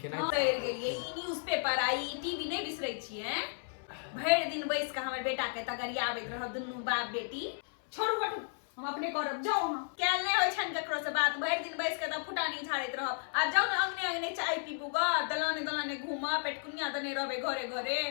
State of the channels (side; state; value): right; silent; 55 dB below the other